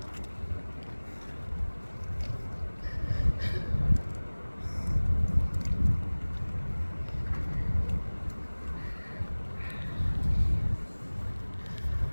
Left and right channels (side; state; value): both; inverted; correlation -1.00